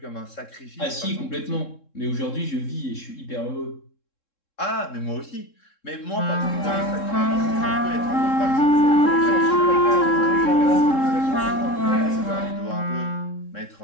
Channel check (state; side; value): late; right; 3.7 ms